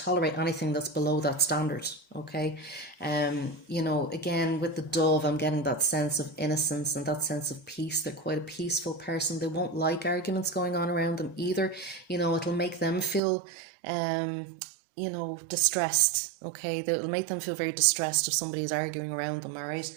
anything that's below that standard, okay? Again, with the dove, I'm getting that sense of innocence and that sense of peace. They're quite a peaceful person. They won't like arguments going on around them either. It'll make them feel, distressed, okay? It'll make them feel very distressed if somebody is arguing around them, all right?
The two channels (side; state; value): left; drops out; at 13.2 s